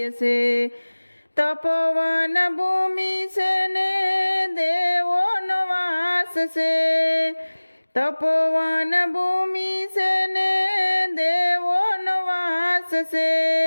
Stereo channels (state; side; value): inverted; both; correlation -1.00